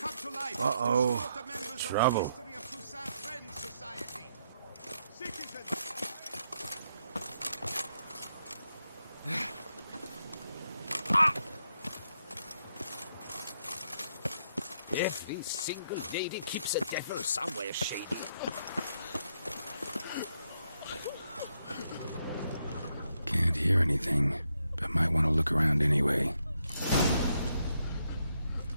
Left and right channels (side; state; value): both; inverted; correlation -0.79